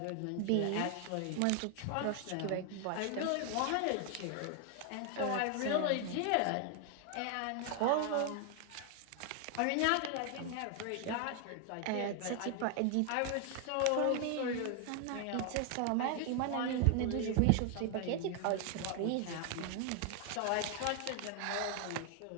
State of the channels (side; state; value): both; different; correlation 0.00